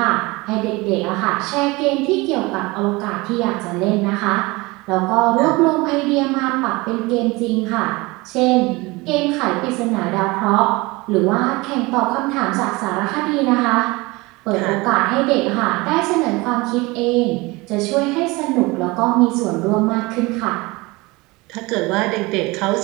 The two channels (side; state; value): left; quieter; 23.3 dB